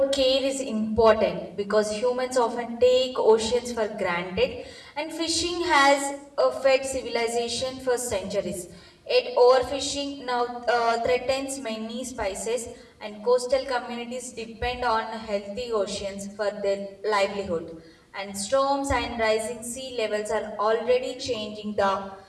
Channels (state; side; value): identical; both; correlation 1.00